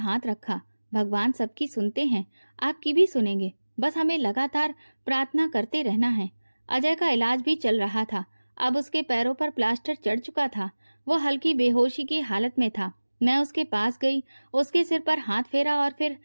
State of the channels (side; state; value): both; inverted; correlation -1.00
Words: रखा। भगवान सबकी सुनते हैं, आपकी भी सुनेंगे, बस हमें लगातार प्रार्थना करते रहना है। अजय का इलाज भी चल रहा था। अब उसके पैरों पर प्लास्टर चढ़ चुका था। वो हल्की बेहोशी की हालत में था। मैं उसके पास गई, उसके सिर पर हाथ फेरा और फिर